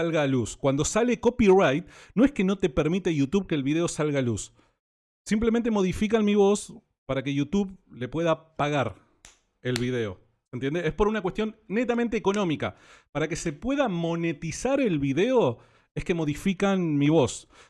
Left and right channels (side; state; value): both; identical; correlation 1.00